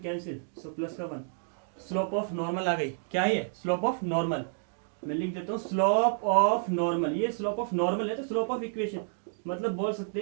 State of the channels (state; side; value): silent; left; digital silence